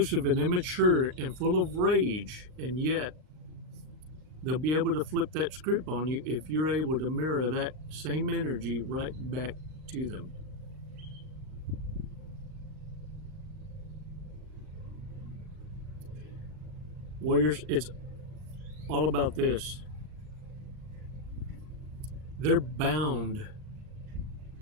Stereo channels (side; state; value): left; late; 38 ms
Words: and immature and full of rage, and yet they'll be able to flip that script on you if you're able to mirror that same energy right back to them. Warriors, it's all about this. They're bound